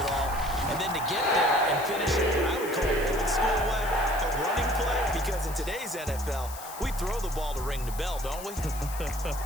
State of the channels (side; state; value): left; noise; hiss, 13 dB below the sound